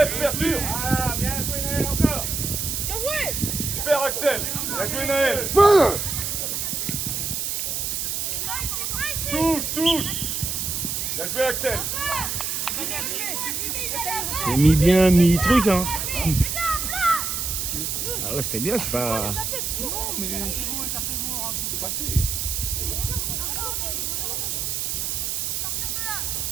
couverture. Ah, bien joué Naël encore. Super Axel. Bien joué Naël. Touche. Bien joué Axel. C'est mi-bien, mi-truc, hein. Ah là, c'était bien, c'est pas... Non, mais c'est passé.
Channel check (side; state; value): right; noise; hiss, 1 dB below the sound